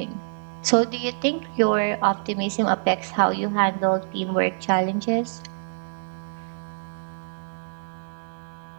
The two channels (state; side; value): silent; left; digital silence